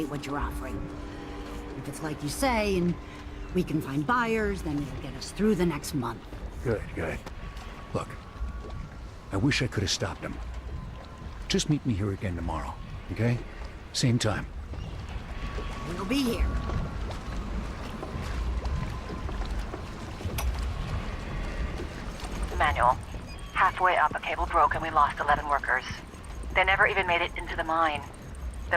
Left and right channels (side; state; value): both; identical; correlation 1.00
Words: what you're offering. If it's like you say, and we can find buyers, then it'll get us through the next month. Good, good. Look, I wish I could have stopped him. Just meet me here again tomorrow, okay? Same time. We'll be here. Manual. Halfway up, a cable broke and we lost 11 workers. They never even made it into the mine.